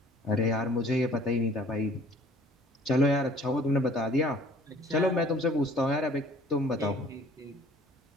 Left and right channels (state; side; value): normal; both; correlation 0.53